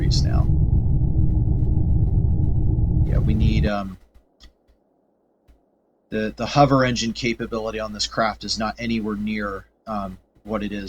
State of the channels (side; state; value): both; identical; correlation 1.00